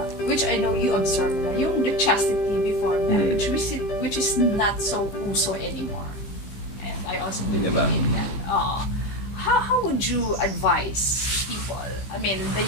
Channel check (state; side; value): late; right; 15 ms